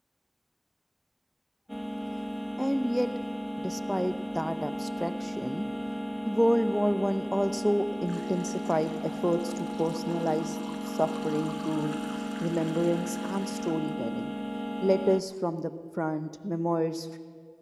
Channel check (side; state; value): both; identical; correlation 1.00